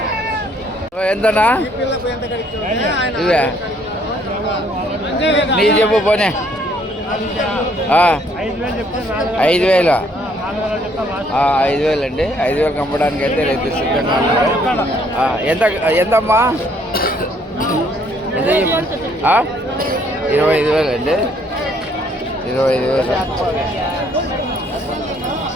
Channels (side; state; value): both; normal; correlation 0.65